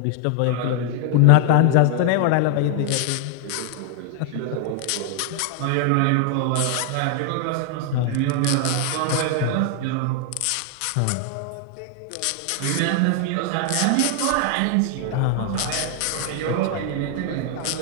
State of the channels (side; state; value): both; different; correlation 0.00